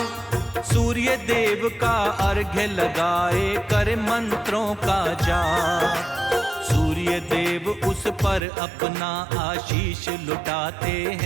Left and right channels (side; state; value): left; drops out; at 8.4 s